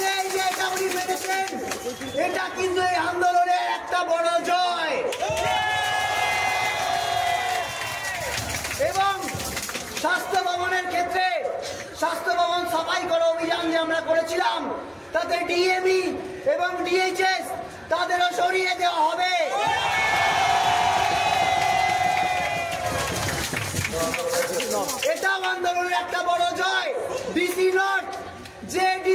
এই যে এটা উনি পেয়েছেন, এটা কিন্তু এই আন্দোলনের একটা বড় জয়। এবং স্বাস্থ্য ভবনের ক্ষেত্রে স্বাস্থ্য ভবন সাফাই করা অভিযান যে আমরা করেছিলাম, তাতে ডিএমই এবং ডিএইচএস তাদেরও সরিয়ে দেওয়া হবে। এটাও আন্দোলনের একটা বড় জয়। ডিসি নর্থ, যে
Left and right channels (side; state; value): both; identical; correlation 1.00